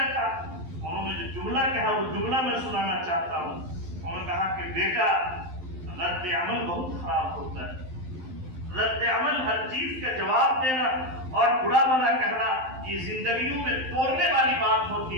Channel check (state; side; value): late; left; 12 ms